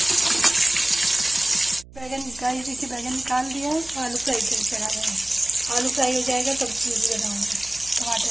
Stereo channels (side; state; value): right; noise; hum, 21 dB below the sound